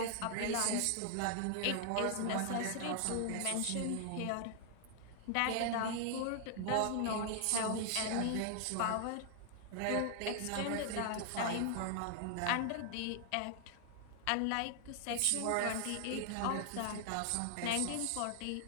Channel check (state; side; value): different; both; correlation 0.00